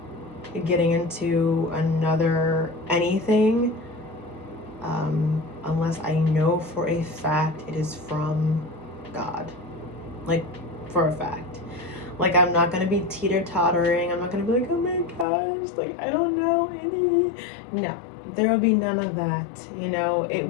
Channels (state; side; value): drops out; right; at 15.2 s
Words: getting into anything unless I know for a fact it is from God. Like, for a fact. Like, I'm not gonna be teeter-tottering. I'm not gonna be like, oh my gosh, like, I don't know any. No, there will be none of that. You know, it